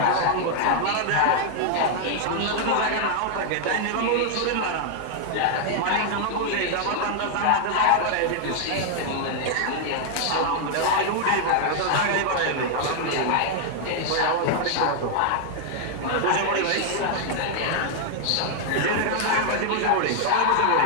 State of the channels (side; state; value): both; different; correlation 0.00